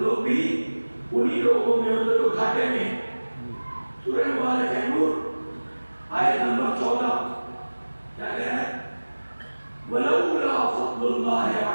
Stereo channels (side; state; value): both; inverted; correlation -1.00